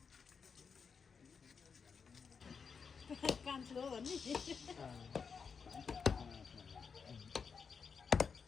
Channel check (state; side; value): quieter; right; 5.9 dB